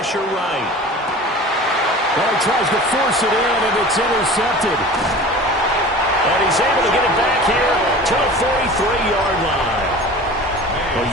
right. Well, he tries to force it in, and it's intercepted. And he's able to get it back here to the 43-yard line.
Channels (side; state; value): both; normal; correlation 0.38